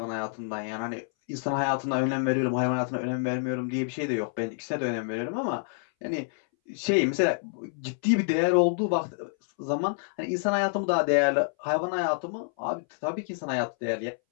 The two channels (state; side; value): silent; right; 59 dB below the other